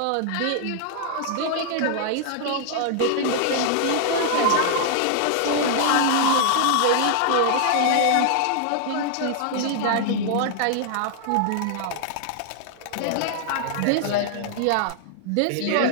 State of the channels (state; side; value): different; both; correlation -0.01